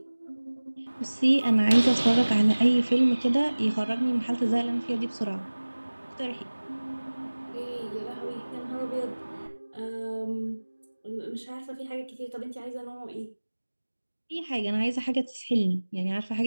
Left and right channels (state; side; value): inverted; both; correlation -1.00